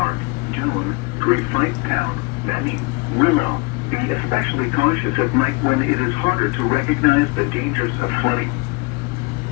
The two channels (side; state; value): right; quieter; 27.0 dB